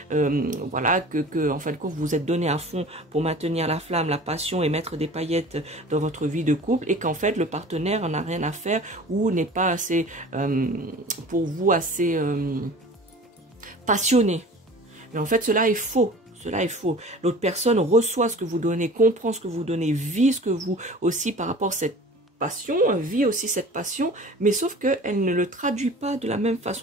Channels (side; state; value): both; normal; correlation 0.42